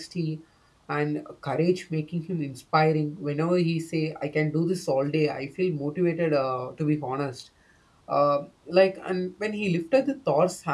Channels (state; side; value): identical; both; correlation 1.00